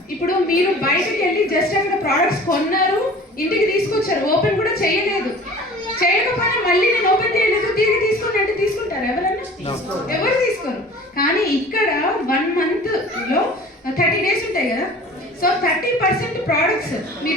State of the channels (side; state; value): both; normal; correlation 0.43